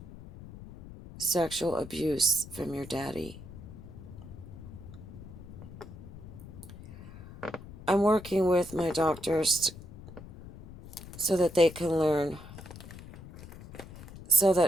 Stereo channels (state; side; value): noise; left; rumble, 15 dB below the sound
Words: sexual abuse from your daddy. I'm working with my doctors so that they can learn, so